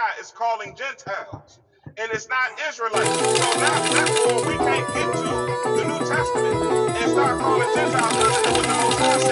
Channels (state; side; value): identical; both; correlation 1.00